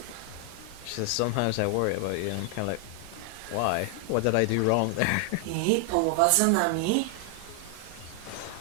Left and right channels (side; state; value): both; different; correlation 0.00